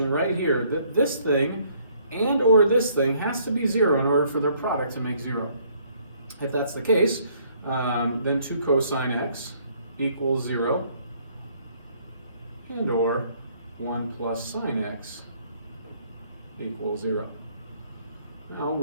right here, that this thing and or this thing has to be 0 in order for their product to make 0. If that's the case, then 2 cosine x equals 0 and or 1 plus sine x equals 0. Now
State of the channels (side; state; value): both; inverted; correlation -0.64